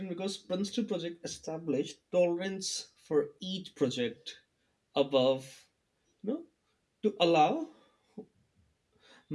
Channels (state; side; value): identical; both; correlation 1.00